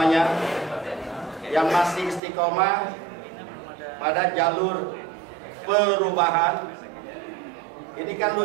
yang masih istiqomah pada jalur perubahan. Ini kan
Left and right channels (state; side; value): drops out; left; at 2.2 s